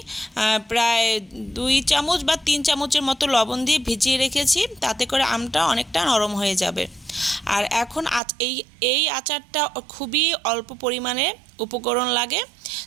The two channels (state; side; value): drops out; left; at 8.2 s